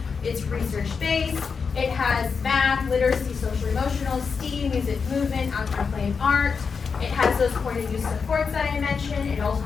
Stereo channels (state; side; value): quieter; right; 5.5 dB